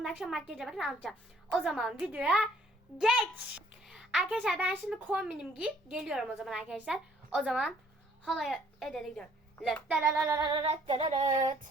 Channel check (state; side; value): normal; both; correlation 0.61